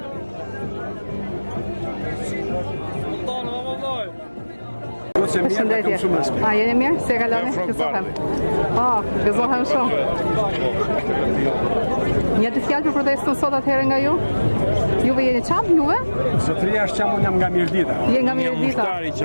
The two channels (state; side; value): inverted; both; correlation -1.00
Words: Përshëndetje. A, jeni mirë? Se kaloni? Gëzohem. Gëzohem shumë. Një të fjallë për protestën sot atëherë nga ju? Juve jeni qamë, juve? Zotëria është qamë, unë jam nga Mirdita. Je nga Mirdita. Një mushtari